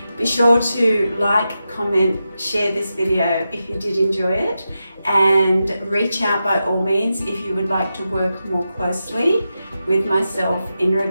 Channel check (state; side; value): inverted; both; correlation -0.90